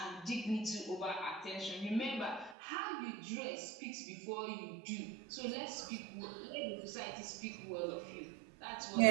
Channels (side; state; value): left; drops out; at 2.6 s